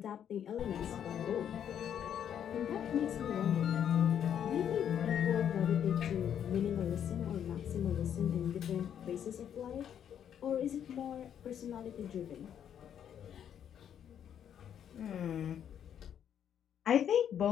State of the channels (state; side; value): quieter; right; 9.2 dB